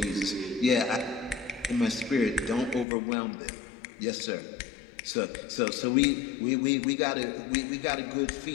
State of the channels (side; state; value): right; drops out; at 2.9 s